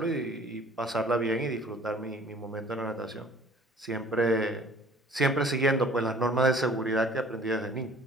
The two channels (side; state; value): both; normal; correlation 0.51